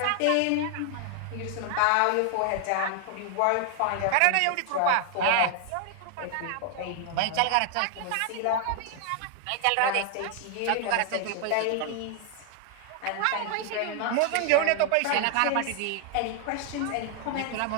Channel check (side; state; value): both; different; correlation 0.00